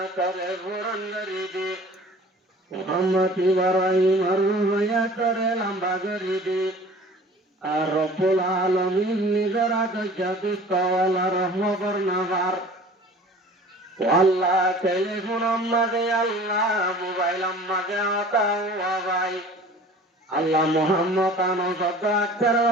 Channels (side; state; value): both; normal; correlation 0.45